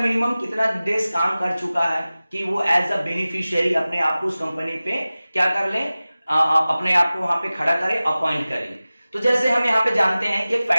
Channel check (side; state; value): both; inverted; correlation -0.97